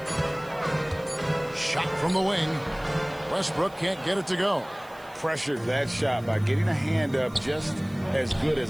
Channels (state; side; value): noise; right; hiss, 26 dB below the sound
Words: Shot from the wing. Westbrook can't get it to go. Pressured that shot by getting a hand up just as good